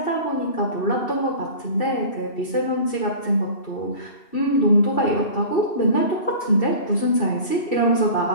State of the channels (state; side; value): late; right; 2.7 ms